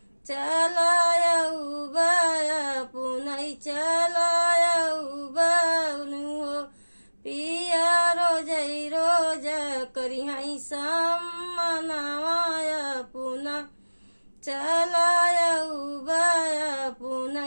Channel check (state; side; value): inverted; both; correlation -1.00